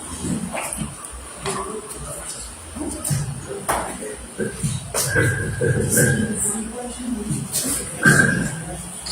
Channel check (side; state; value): both; identical; correlation 1.00